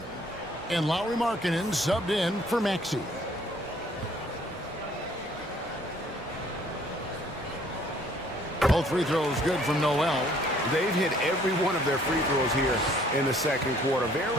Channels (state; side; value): normal; both; correlation 0.59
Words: And Lauri Markkanen subbed in for Maxey. Both free throws good from Noel. They've hit every one of their free throws here in the second quarter.